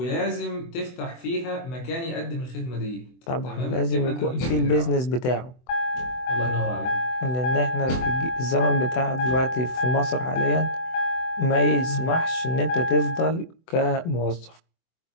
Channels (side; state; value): right; late; 24 ms